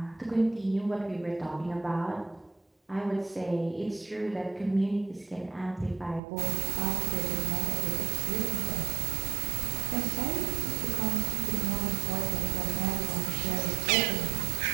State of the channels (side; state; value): left; drops out; at 6.2 s